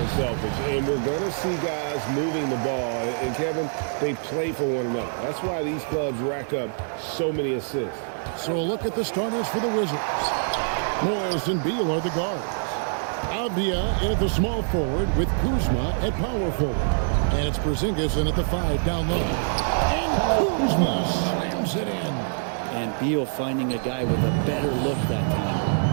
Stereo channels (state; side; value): silent; left; digital silence